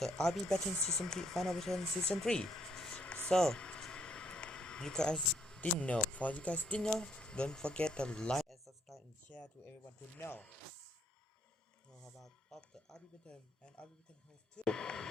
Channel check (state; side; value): normal; both; correlation 0.70